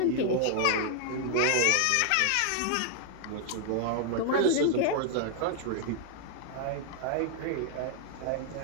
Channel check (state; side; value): different; both; correlation 0.00